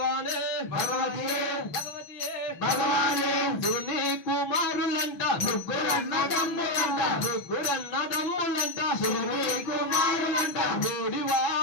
భగవతియే భగవతియే భగవానే శివుని కుమారులంట ముగ్గురన్నదమ్ములంట ముగ్గురన్నదమ్ములంట శివుని కుమారులంట ఓడివా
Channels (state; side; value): late; right; 6.3 ms